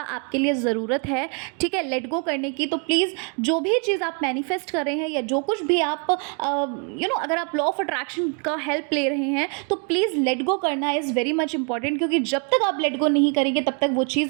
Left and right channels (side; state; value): left; quieter; 36.7 dB